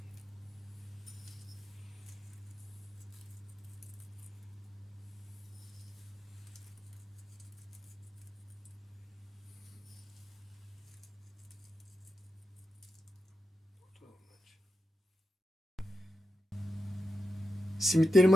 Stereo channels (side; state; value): both; normal; correlation 0.89